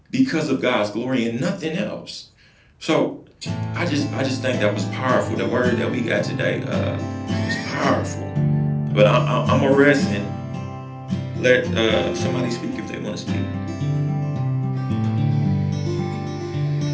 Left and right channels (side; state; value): both; identical; correlation 1.00